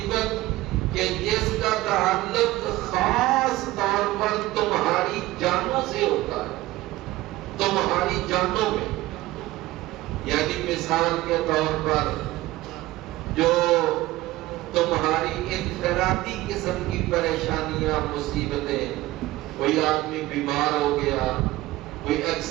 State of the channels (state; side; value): quieter; left; 17.5 dB